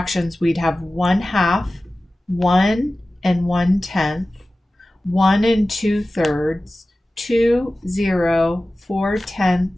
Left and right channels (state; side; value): normal; both; correlation 0.96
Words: we'd have 1/2, 1 and 1/10, 1 and 2/3, 2, 0,